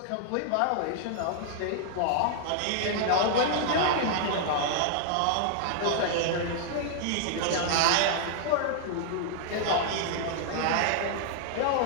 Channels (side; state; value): both; different; correlation 0.00